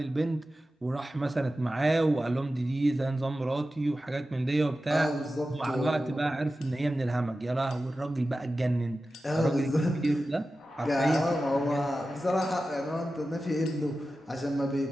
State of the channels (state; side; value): normal; both; correlation 0.94